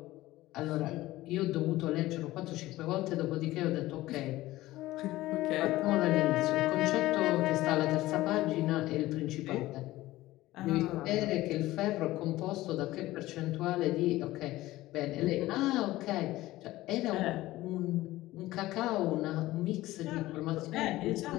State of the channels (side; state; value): right; quieter; 17.1 dB